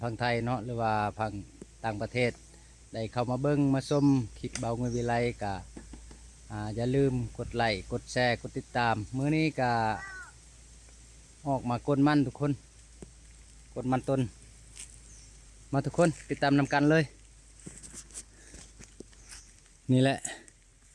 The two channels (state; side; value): identical; both; correlation 1.00